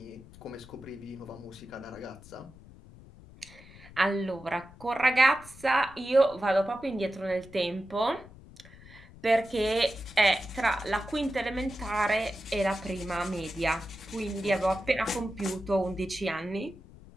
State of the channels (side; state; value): left; noise; rumble, 20 dB below the sound